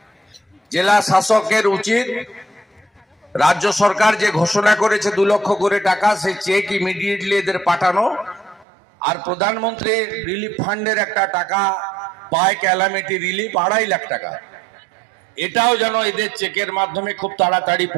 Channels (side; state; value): left; drops out; at 8.7 s